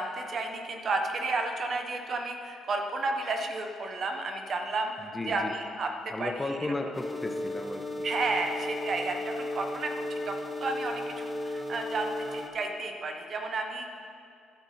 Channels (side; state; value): both; normal; correlation 0.79